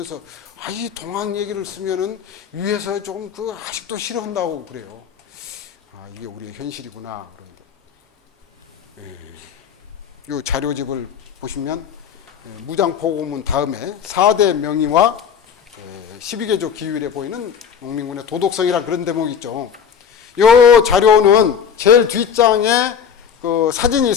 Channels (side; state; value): right; quieter; 7.5 dB